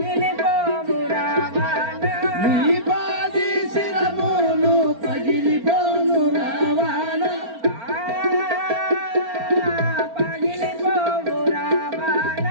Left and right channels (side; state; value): left; late; 4.4 ms